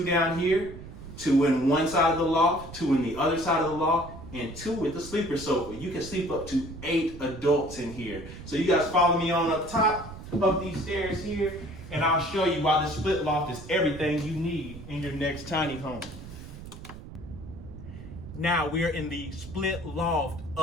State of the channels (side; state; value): right; noise; rumble, 13 dB below the sound